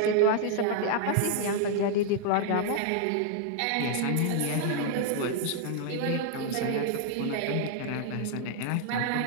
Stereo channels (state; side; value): different; both; correlation -0.01